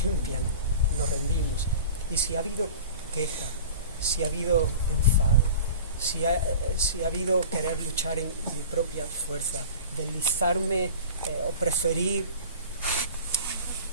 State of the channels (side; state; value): both; inverted; correlation -0.39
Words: límpianos, nos rendimos. Y si ha habido queja, si ha habido enfado, si ha habido querer luchar en mi propia fuerza, deslizarme o preferir